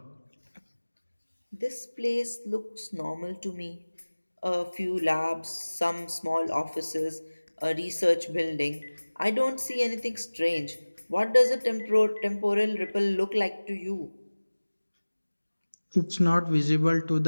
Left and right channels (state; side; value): inverted; both; correlation -1.00